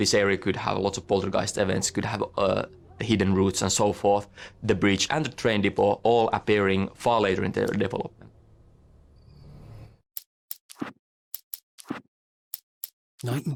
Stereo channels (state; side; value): identical; both; correlation 1.00